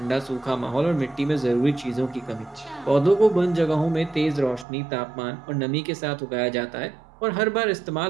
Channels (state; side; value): drops out; left; at 4.7 s